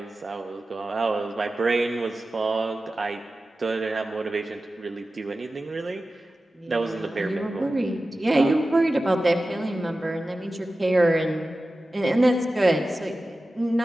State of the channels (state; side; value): normal; both; correlation 0.95